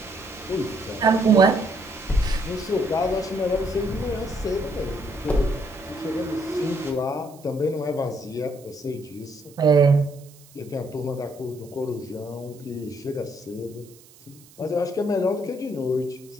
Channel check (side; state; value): right; noise; hiss, 24 dB below the sound